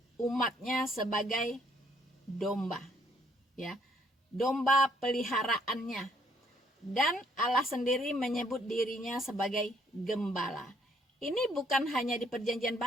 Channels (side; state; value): both; normal; correlation 0.66